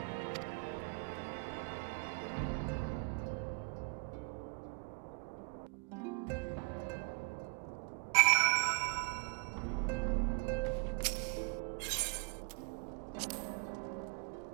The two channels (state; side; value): quieter; left; 36.6 dB